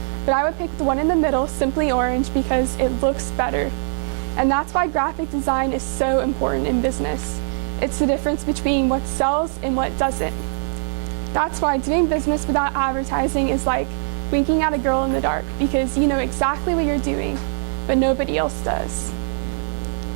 but I would pick the one in the middle, simply orange, because it looks better. And that's why graphic design is so important in business. It's the difference between what sells and what doesn't. That's why doing business without advertising is like winking at a girl in the dark, because you know exactly what you're doing, but nobody else does.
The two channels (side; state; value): left; silent; 58 dB below the other